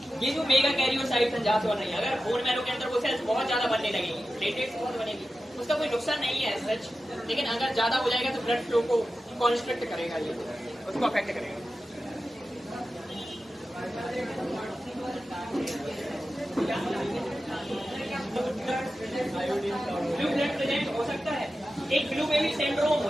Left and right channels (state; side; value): normal; both; correlation 0.93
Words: ये जो मेगा कैरियोसाइट संजात हो रही है, अगर बोन मैरो के अंदर वो सेल्स बहुत ज्यादा बनने लगेंगी, प्लेटलेट्स बहुत बनेगी, उसका कोई नुकसान नहीं है सच, लेकिन अगर ज्यादा हो जाएगा तो ब्लड फ्लो को कॉन्स्ट्रिक्ट करेगा, ये उसको अफेक्ट करेगा। ब्लू ब्लड प्रेजेंट हो सकता है, एक ब्लू बेबी सिंड्रोम